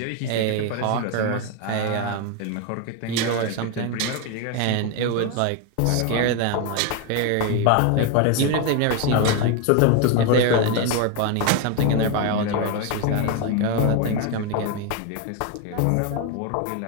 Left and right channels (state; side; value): different; both; correlation 0.01